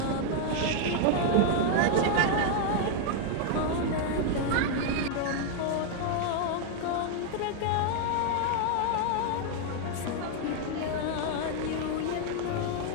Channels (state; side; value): different; both; correlation 0.00